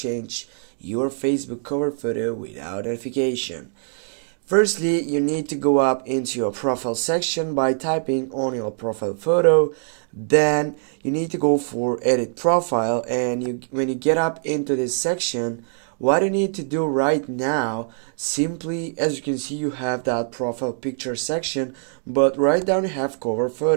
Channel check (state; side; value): silent; left; digital silence